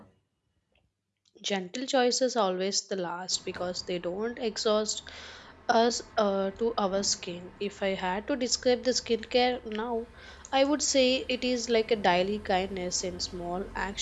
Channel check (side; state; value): both; identical; correlation 1.00